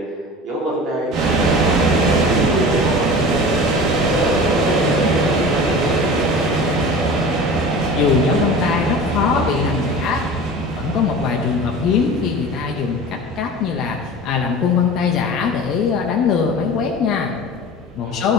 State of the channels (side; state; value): both; normal; correlation 0.36